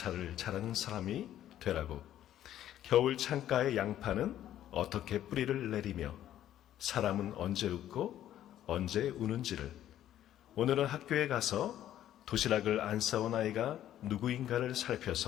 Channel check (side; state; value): right; quieter; 11.9 dB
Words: 잘하는 사람이 되라고. 겨울 창가의 양파는 어떻게 뿌리를 내리며 사람은 언제 웃고 언제 우는지를. 오늘은 학교에 가서 도시락을 안 싸온 아이가 누구인가를